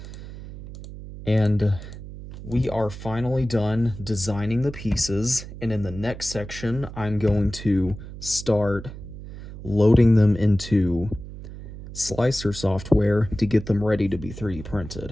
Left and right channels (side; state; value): right; noise; hum, 13 dB below the sound